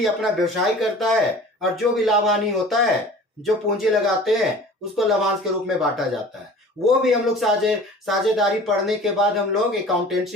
अपना व्यवसाय करता है और जो भी लाभ हानि होता है, जो पूंजी लगाते हैं उसको लाभांश के रूप में बांटा जाता है। वो भी हम लोग साझेदारी पढ़ने के बाद हम लोग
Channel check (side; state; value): both; normal; correlation 0.44